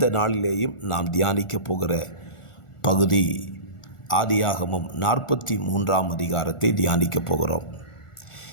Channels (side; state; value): right; late; 1.4 ms